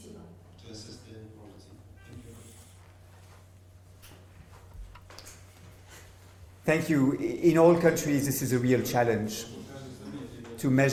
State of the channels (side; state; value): both; identical; correlation 1.00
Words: Thank you. In all countries, this is a real challenge to